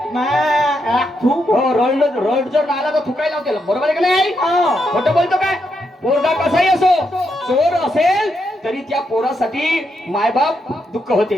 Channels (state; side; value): normal; both; correlation 0.81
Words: रड जर आला तर थुकाई लावते, बरोबर आहे का नाही? खोटं बोलतो काय? पोरगा कसाही असो, चोर असेल तरी त्या पोरासाठी मायबाप दुःख